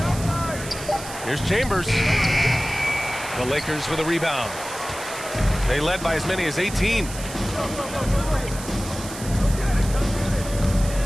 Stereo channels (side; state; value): right; noise; hiss, 12 dB below the sound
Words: Here's Chambers. The Lakers with a rebound. They led by as many as 18.